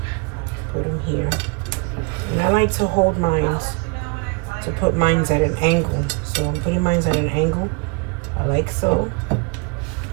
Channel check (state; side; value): quieter; left; 29.0 dB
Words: put them here. And I like to hold mine, to put mine at an angle. So I'm putting mine at an angle, like so.